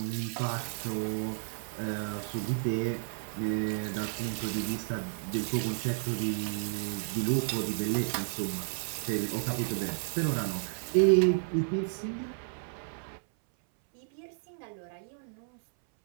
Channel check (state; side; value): silent; left; 56 dB below the other